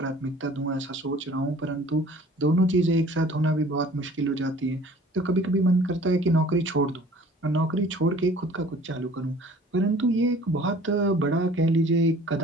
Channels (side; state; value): both; normal; correlation 0.50